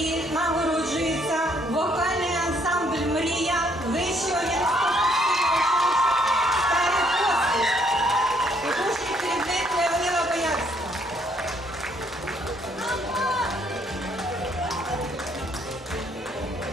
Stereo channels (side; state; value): both; normal; correlation 0.67